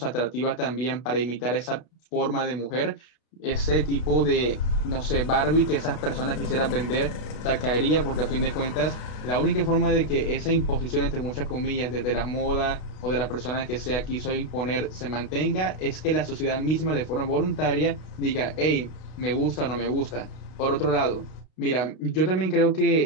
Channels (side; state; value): right; late; 32 ms